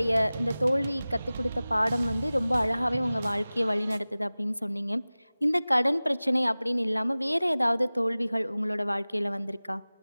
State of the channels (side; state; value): both; inverted; correlation -0.98